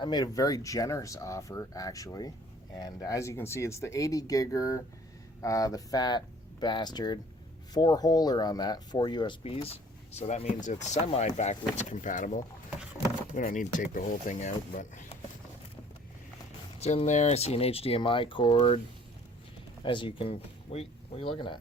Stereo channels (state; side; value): normal; both; correlation 0.54